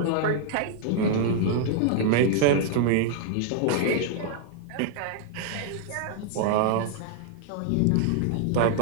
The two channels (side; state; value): both; different; correlation 0.00